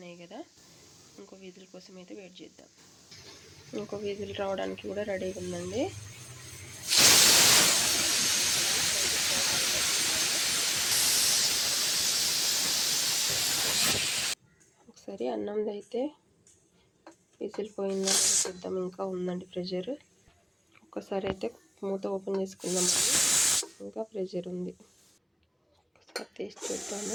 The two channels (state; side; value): identical; both; correlation 1.00